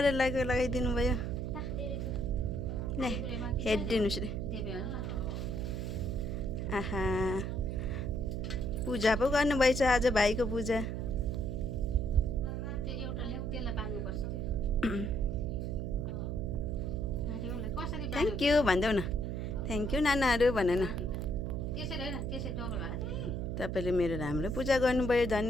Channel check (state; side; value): noise; right; hum, 3 dB below the sound